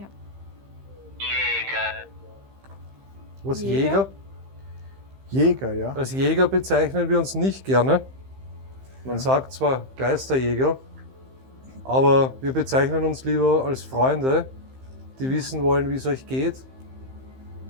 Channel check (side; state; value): left; late; 15 ms